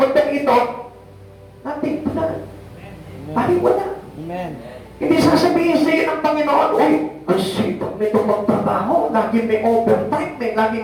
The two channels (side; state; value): both; identical; correlation 1.00